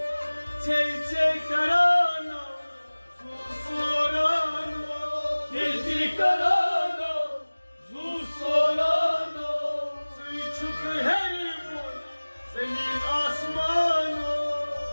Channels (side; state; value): both; inverted; correlation -1.00